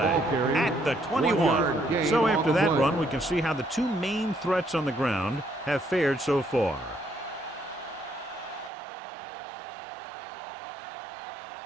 at the 21. So after that run, we can see how the two main threats on the ground have fared so far.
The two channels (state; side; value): drops out; left; at 8.7 s